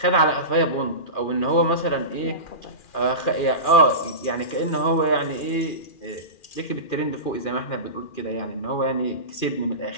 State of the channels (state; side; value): late; right; 2.4 ms